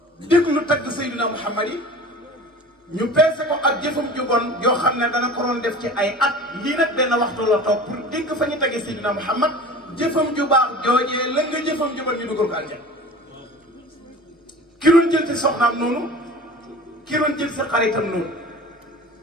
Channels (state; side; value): normal; both; correlation 0.39